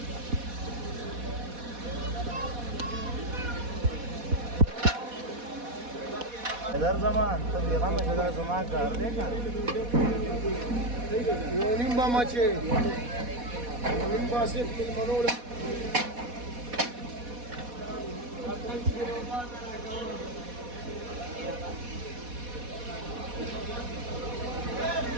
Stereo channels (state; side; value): late; left; 4.1 ms